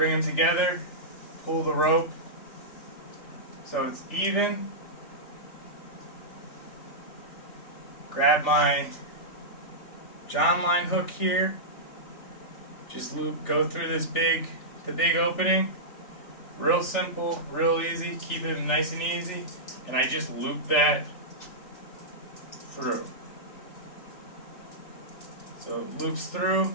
them together, pull the rope so it's even. Grab my Jon Line hook here. Just go through the big opening. Real simple, real easy. Keep it nice and easy. And I just loop that through. So it loops through.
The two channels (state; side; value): late; right; 3.4 ms